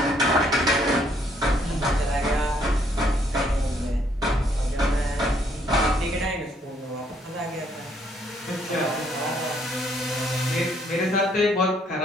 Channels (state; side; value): normal; both; correlation 0.68